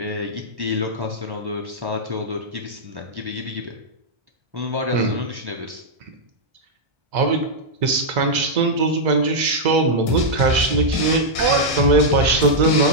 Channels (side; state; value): left; late; 1.3 ms